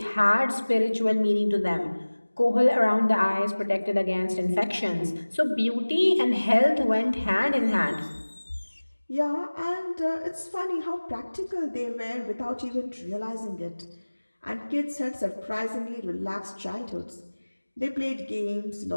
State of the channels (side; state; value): both; inverted; correlation -1.00